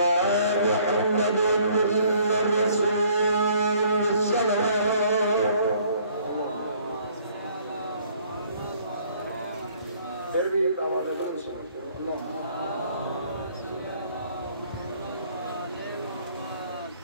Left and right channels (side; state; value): both; inverted; correlation -0.60